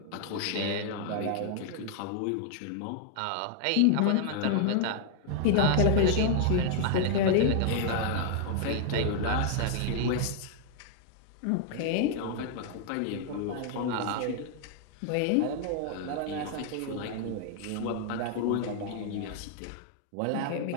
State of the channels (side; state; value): both; different; correlation 0.00